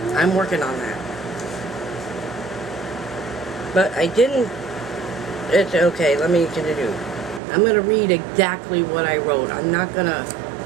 I'm working on that. But I didn't... It's okay, let me continue. I'm going to read exactly what I wrote. I'm not going to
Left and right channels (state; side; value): drops out; left; at 7.4 s